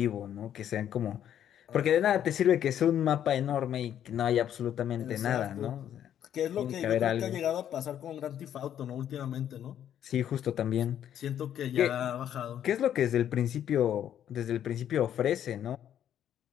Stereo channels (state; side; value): quieter; right; 10.2 dB